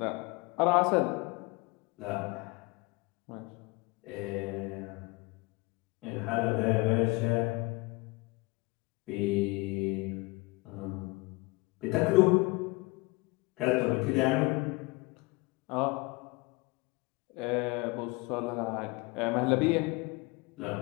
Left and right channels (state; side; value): quieter; right; 25.4 dB